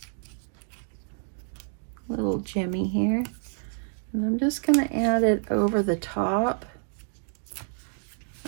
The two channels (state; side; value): silent; left; 59 dB below the other